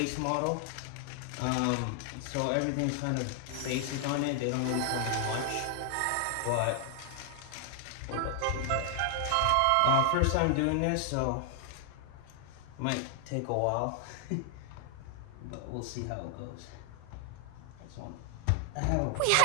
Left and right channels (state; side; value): different; both; correlation 0.00